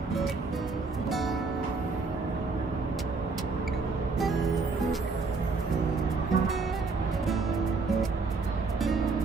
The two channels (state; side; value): quieter; left; 4.2 dB